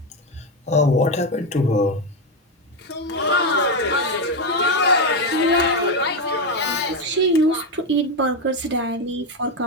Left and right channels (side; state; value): both; normal; correlation 0.09